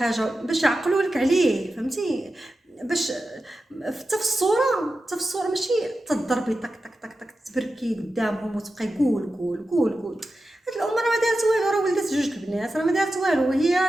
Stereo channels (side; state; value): both; normal; correlation 0.92